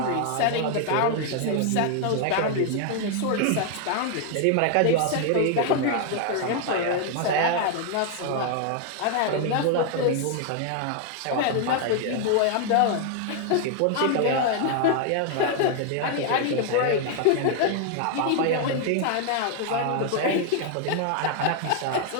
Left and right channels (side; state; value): both; different; correlation 0.00